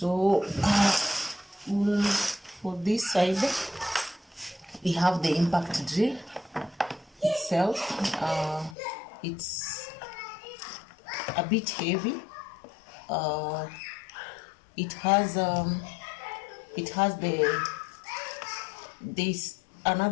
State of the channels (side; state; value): right; drops out; at 8.8 s